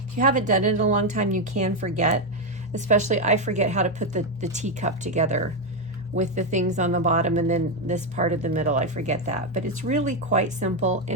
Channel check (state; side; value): normal; both; correlation 0.06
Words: If you haven't done it in a long time, you can forget. Especially, I forget how to put the teacup together with the things on the bottom and then this part of the middle. I forget that. But it's really quite simple,